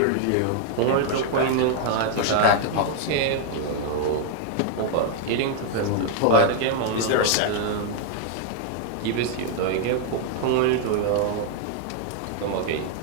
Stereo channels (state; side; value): different; both; correlation 0.00